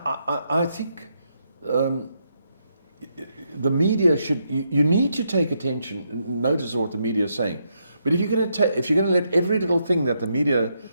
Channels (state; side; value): inverted; both; correlation -0.79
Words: think the media should, you need to take attention, notice what the media is saying. But if you're going to let every little thing that the media